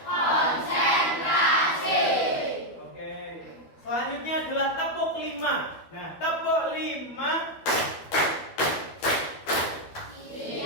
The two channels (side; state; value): right; late; 12 ms